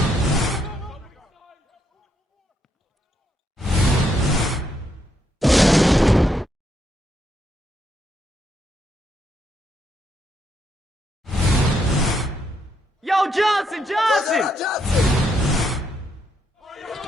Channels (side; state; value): both; normal; correlation 0.77